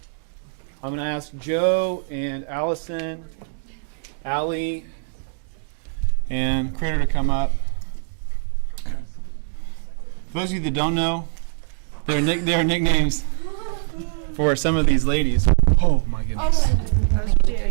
I'm going to ask Joe and Allison, Allie, and Critter to come up. For those of you that don't know, there are nicknames for some of these ladies. Oh my goodness.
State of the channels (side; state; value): left; silent; digital silence